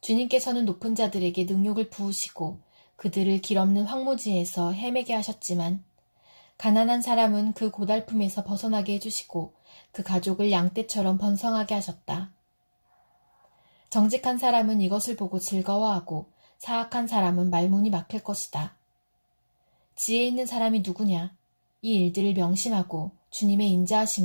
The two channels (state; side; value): inverted; both; correlation -1.00